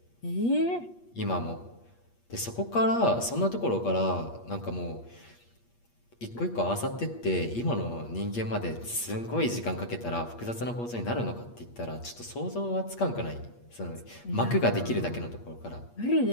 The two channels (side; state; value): right; late; 8.5 ms